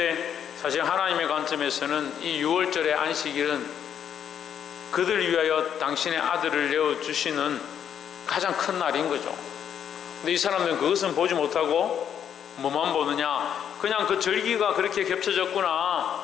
사실 하나님의 관점에서는 이 6월절의 안식일은 그들 위하여 당신의 아들을 내어주시는 가장 큰 날인 거죠. 근데 이 사람들은 그것은 보지 못하고 뭐만 보느냐? 그냥 그 절기가 그렇게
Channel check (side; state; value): right; quieter; 8.8 dB